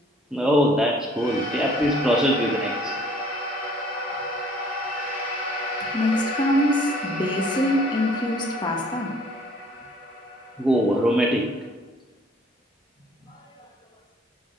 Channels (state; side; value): normal; both; correlation 0.57